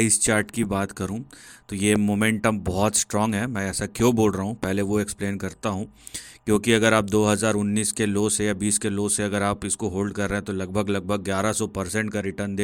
चार्ट की बात करूं तो ये मोमेंटम बहुत स्ट्रांग है। मैं ऐसा क्यों बोल रहा हूं, पहले वो एक्सप्लेन करता हूं। क्योंकि अगर आप 2019 के लो से या 20 के लो से अगर आप इसको होल्ड कर रहे हैं तो लगभग लगभग 1100% का रिटर्न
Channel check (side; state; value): both; identical; correlation 1.00